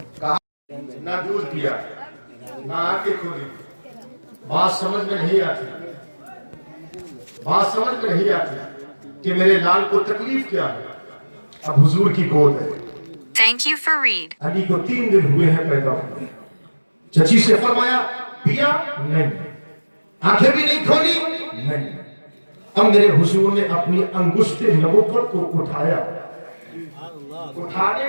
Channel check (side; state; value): both; inverted; correlation -1.00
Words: کہا نہ دودھ پیا نہ آنکھیں کھولی۔ بات سمجھ میں نہیں آتی، بات سمجھ میں نہیں آتی کہ میرے لال کو تکلیف کیا ہے۔ اب حضور کی گود ہے، Thank you for read. علی کو 3 دن ہوئے ہیں پیدا ہوئے۔ چچی سے فرمایا پیا نہیں، آنکھیں بھی نہیں کھولی نہیں۔ اب میرے حضور نے اپنی انگشت نبوت کو اٹھایا، اٹھانے